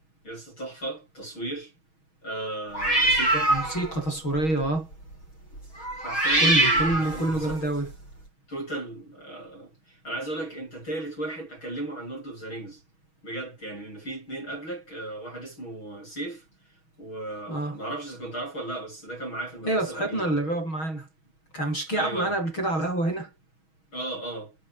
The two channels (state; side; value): late; right; 6.3 ms